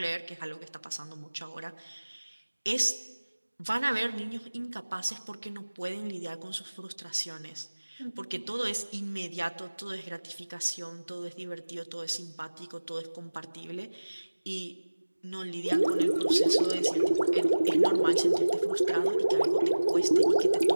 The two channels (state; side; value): inverted; both; correlation -1.00